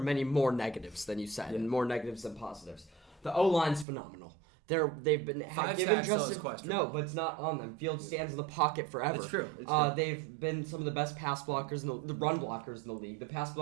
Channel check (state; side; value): drops out; left; at 3.9 s